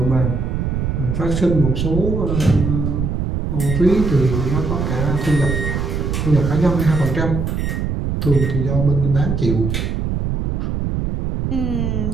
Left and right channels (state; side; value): noise; right; rumble, 1 dB below the sound